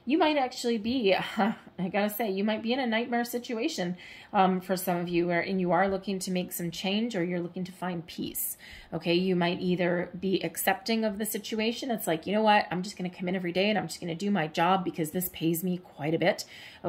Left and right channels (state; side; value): identical; both; correlation 1.00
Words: You might actually be, I gotta say, you might be in a nightmare situation for some of you, and you are looking to make some change, or you're looking to find peace, okay? You might either be accepting of the situation. It's like, you know what, I'm just gonna come in every day and I'm just gonna do my job because this pays me quite a bit,